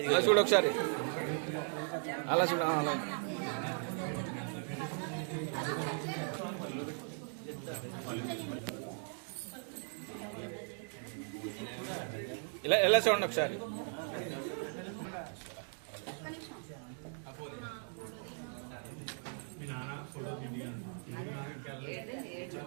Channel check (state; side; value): silent; left; 52 dB below the other